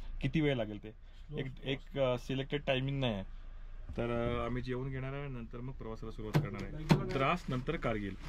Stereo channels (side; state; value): both; identical; correlation 1.00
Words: किती वेळ लागेल. ते एक सिलेक्टेड टायमिंग नाही आहे. तर आम्ही जेवून घेणार आहे, नंतर मग प्रवासाला सुरुवात करणार आहे. द्रास नंतर कारगिल.